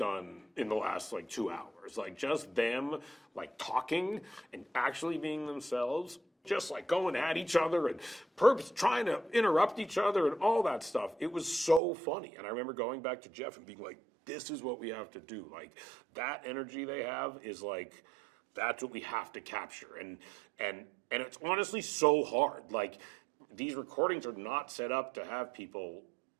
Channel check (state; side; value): drops out; left; at 11.8 s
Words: in the last like 2 hours. Like just them like talking and actually being themselves, just like going at each other and trying to interrupt each other and all that stuff. It was so funny. And I remember going back to Jeff and being like, this is what we have to do. Like that energy they have is like, that's what we have to capture. And it's honestly so hard. Like these recordings are not set up to have people